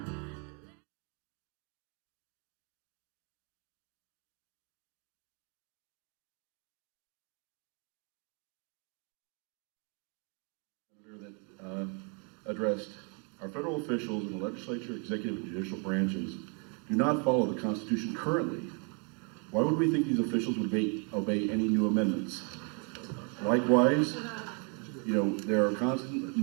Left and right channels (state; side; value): quieter; left; 37.2 dB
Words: That addressed our federal officials in the legislature, executive, and judicial branches do not follow the Constitution currently. Why would we think these officials would obey any new amendments? Likewise, there are constant